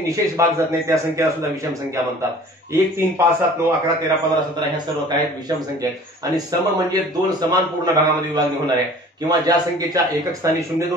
भाग जात नाही त्या संख्येला सुद्धा विषम संख्या म्हणतात. 1, 3, 5, 7, 9, 11, 13, 15, 17 ह्या सर्व काय विषम संख्या आहेत. आणि सम म्हणजे 2 समान पूर्ण भागामध्ये विभागणी होणाऱ्या, किंवा ज्या संख्येच्या एकक स्थानी 0,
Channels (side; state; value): both; normal; correlation 0.47